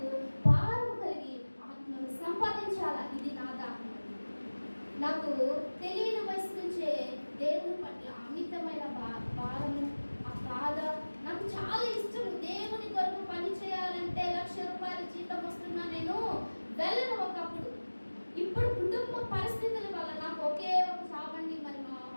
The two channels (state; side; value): inverted; both; correlation -1.00